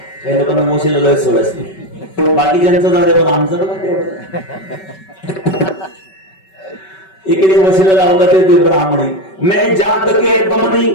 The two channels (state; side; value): late; right; 5.3 ms